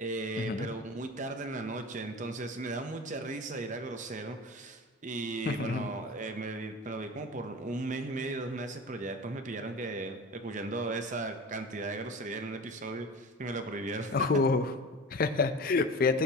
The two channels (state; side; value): normal; both; correlation 0.34